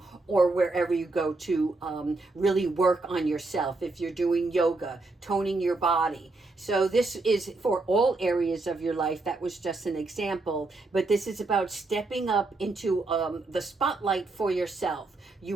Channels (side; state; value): left; quieter; 3.3 dB